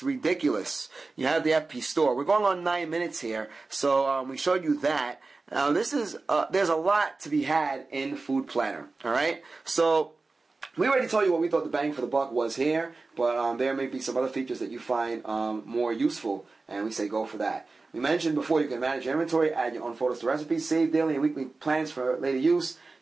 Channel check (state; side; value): quieter; left; 3.7 dB